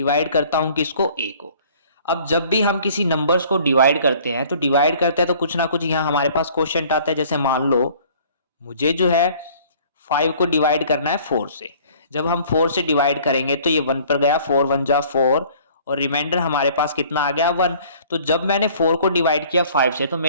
करता हूँ, किसको, a को। अब जब भी हम किसी नंबर्स को डिवाइड करते हैं तो कुछ ना कुछ यहाँ हमारे पास क्वेश्चन आता है। जैसे मान लो मुझे जो है 5 को डिवाइड करना है 4 से। जब हम 4 से डिवाइड करेंगे तो ये 1 पर गया, 4 1 जा 4 और रिमाइंडर हमारे पास कितना आ गया, 1। तो जब मैंने 4 को डिवाइड किया 5 से तो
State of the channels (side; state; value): both; inverted; correlation -0.53